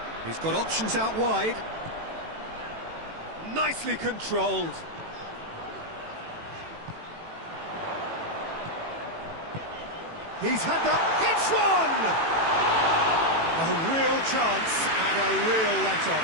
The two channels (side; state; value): left; late; 18 ms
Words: He's got options out wide. Nicely controlled. He's had that. Hits one! A real chance and a real